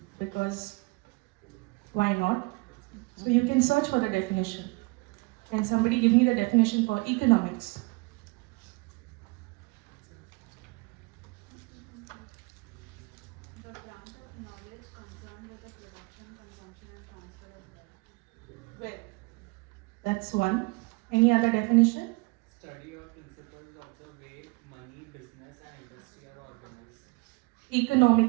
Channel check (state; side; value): quieter; left; 27.7 dB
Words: because why not? So you can search for the definition. Can somebody give me the definition for economics? Well, that's one. Any other definition? Study or principles of the way money, business, and industry are organized.